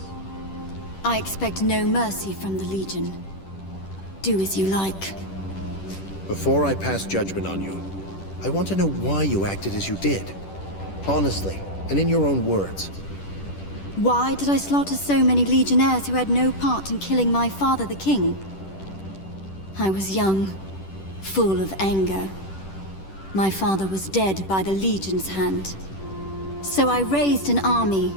I expect no mercy from the Legion. Do as you like. Before I pass judgment on you, I want to know why you acted as you did. Honestly, and in your own words. Why did I slaughter so many Legionnaires who had no part in killing my father, the king? I was young, full of anger. My father was dead by the Legion's hand. So I raised an army.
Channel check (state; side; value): late; right; 10 ms